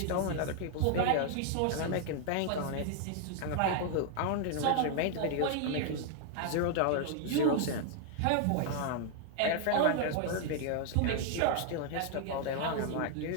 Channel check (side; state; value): both; different; correlation 0.00